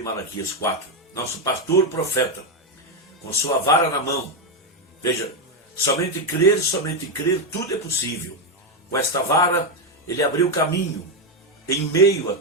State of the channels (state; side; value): normal; both; correlation 0.06